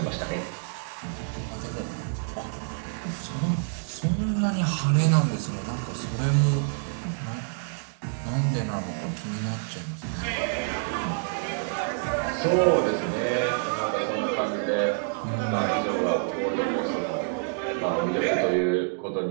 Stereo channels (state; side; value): silent; left; 60 dB below the other